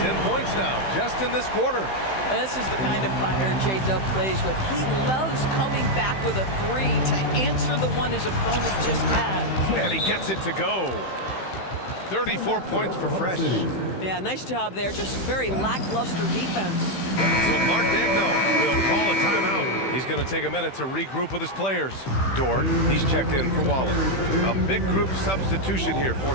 10 points now, just in this quarter. This is the kind of fire J-Dub plays with. He loves coming back with a 3 to answer the one his opponent just had. And he gets it to go. 34 points for Fresh. Yeah, nice job there. Just very lackluster defense. So Mark Degno will call a timeout. He's going to take a minute to regroup with his players. Dort, he's checked in for Wallace. A big group substitution here for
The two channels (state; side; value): late; right; 15 ms